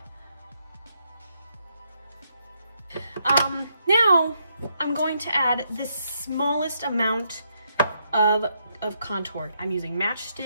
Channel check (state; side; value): inverted; both; correlation -0.77